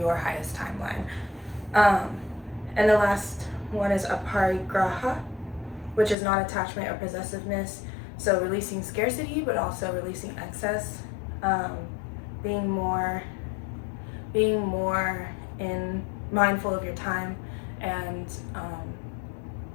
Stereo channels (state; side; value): drops out; right; at 6.2 s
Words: highest timeline. And the last one is aparigraha, which is non-attachment or possessiveness. So releasing scarcity, but also releasing excess, being more mindful of your time, and